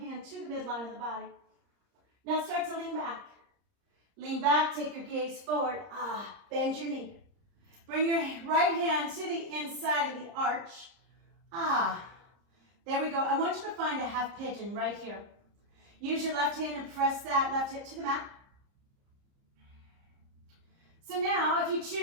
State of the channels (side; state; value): left; late; 30 ms